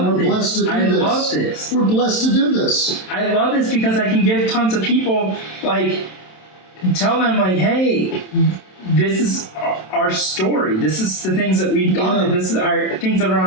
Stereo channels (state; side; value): late; right; 27 ms